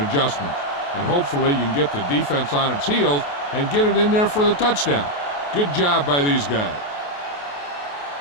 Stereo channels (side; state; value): right; late; 28 ms